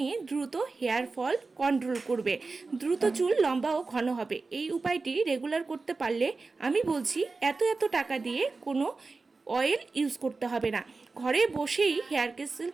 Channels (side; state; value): left; quieter; 3.9 dB